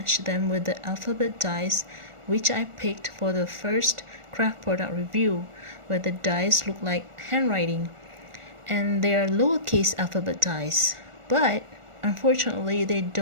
them with the alphabet dies which I picked for the first craft product review, where the dies look like handwriting, and they are lowercase alphabet dies, but unfortunately they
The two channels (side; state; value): left; late; 1.4 ms